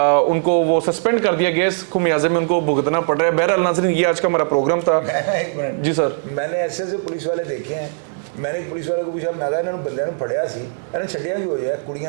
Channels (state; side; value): silent; left; 63 dB below the other